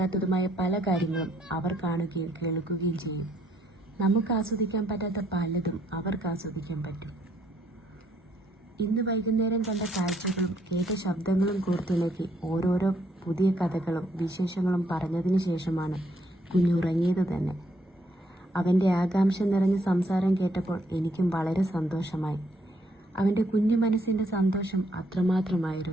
പല കാര്യങ്ങളും അവർ കാണുകയും കേൾക്കുകയും ചെയ്യും. നമുക്ക് ആസ്വദിക്കാൻ പറ്റാത്ത പലതും അവർക്ക് ആസ്വദിക്കാൻ പറ്റും. ഇന്ന് വൈകുന്നേരം കണ്ട കാഴ്ചകളും കേട്ട ശബ്ദങ്ങളും കോർത്തിണക്കി ഓരോരോ പുതിയ കഥകളും വിശേഷങ്ങളും പറഞ്ഞതിന് ശേഷമാണ് കുഞ്ഞുറങ്ങിയത് തന്നെ. അവൻ്റെ ആകാംക്ഷ നിറഞ്ഞ സംസാരം കേട്ടപ്പോൾ എനിക്കും വളരെ സന്തോഷമായി. അവൻ്റെ കുഞ്ഞു മനസ്സിൻ്റെ സന്തോഷം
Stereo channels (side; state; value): both; normal; correlation 0.70